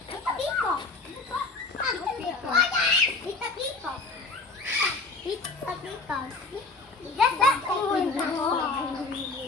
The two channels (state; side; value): quieter; right; 3.6 dB